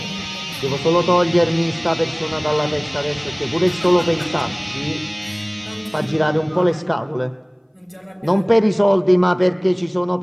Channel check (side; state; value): both; identical; correlation 1.00